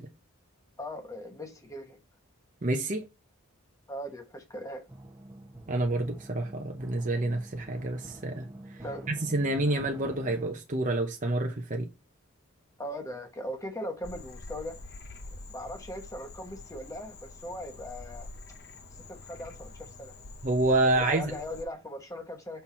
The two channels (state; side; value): normal; both; correlation 0.33